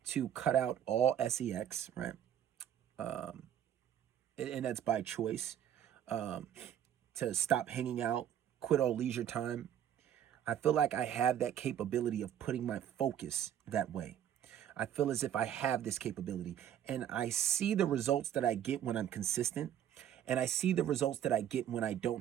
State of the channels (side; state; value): left; quieter; 10.2 dB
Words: to cut out all sex, right? And that's by choice. To stop hanging out, quit all leisure time. I feel like I have that capability of putting my focus that way. I feel as if I have this capability, and I see the results that I get when I'm consistent, and I see the results that I get when I